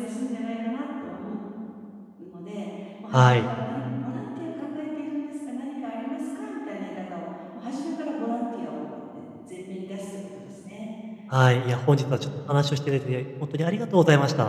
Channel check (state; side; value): identical; both; correlation 1.00